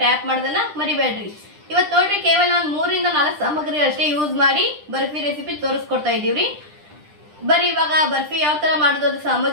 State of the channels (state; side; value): late; left; 10 ms